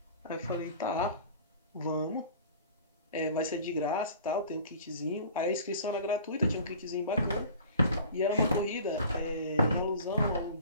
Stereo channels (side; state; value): both; inverted; correlation -0.44